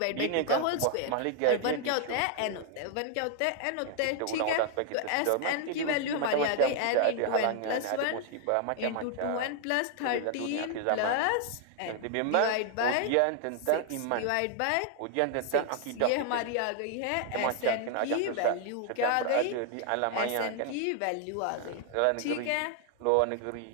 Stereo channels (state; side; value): different; both; correlation 0.00